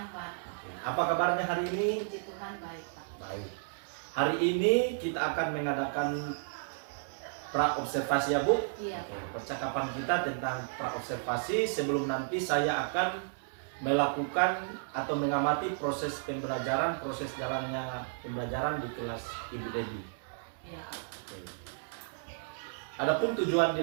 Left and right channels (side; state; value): left; silent; digital silence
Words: Pak. Apa kabarnya hari ini? Puji Tuhan baik Pak. Baik. Hari ini kita akan mengadakan pra-observasi ya Bu. Iya. Percakapan kita tentang pra-observasi sebelum nanti saya akan melakukan atau mengamati proses pembelajaran, proses jalannya pembelajaran di kelas Ibu Debbie. Iya Pak. Oke. Adapun tujuan